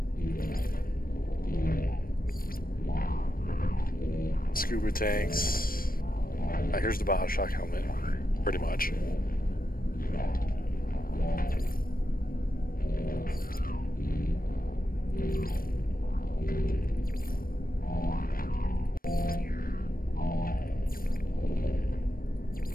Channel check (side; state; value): right; late; 0.42 ms